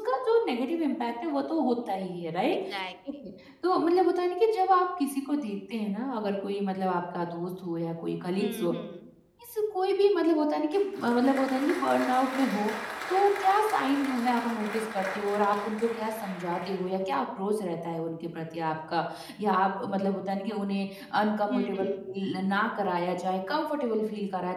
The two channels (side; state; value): both; identical; correlation 1.00